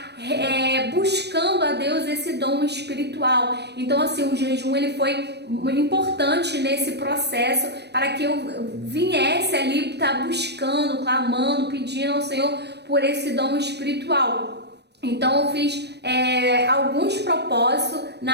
buscando a Deus esse dom espiritual. Então assim, o jejum ele foi importante nesse processo para que eu viesse ali estar buscando, clamando, pedindo ao Senhor por esse dom espiritual. Então eu fiz alguns propósitos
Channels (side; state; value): left; late; 0.49 ms